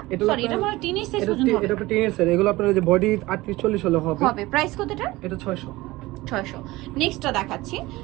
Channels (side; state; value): left; quieter; 19.6 dB